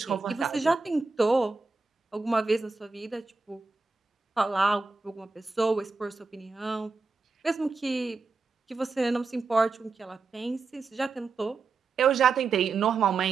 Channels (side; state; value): left; quieter; 4.2 dB